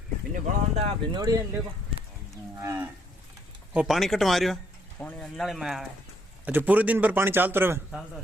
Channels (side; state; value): both; normal; correlation 0.70